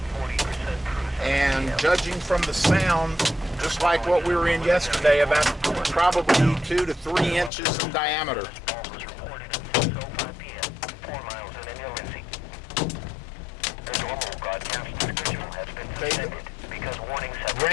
And judging from the sound, just like what we were in yesterday, about probably 2 to 3 inches in diameter. Okay,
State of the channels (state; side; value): drops out; right; at 7.5 s